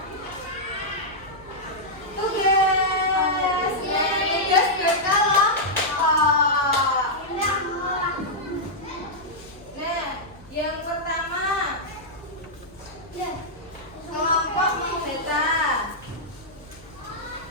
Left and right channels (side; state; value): left; noise; hum, 24 dB below the sound